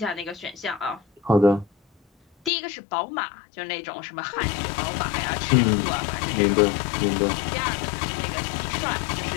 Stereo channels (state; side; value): drops out; right; at 2.5 s